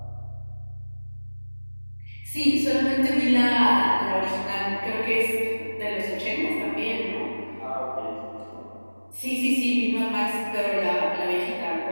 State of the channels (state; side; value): inverted; both; correlation -1.00